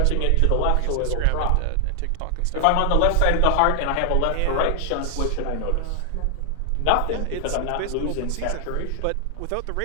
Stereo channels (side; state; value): both; different; correlation 0.00